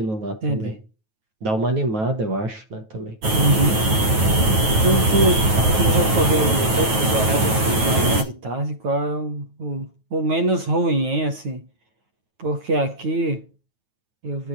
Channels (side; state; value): left; late; 9.3 ms